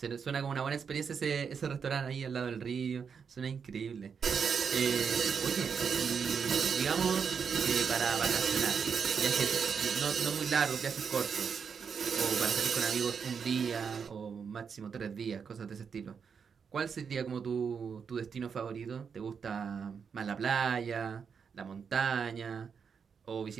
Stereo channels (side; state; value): left; quieter; 6.4 dB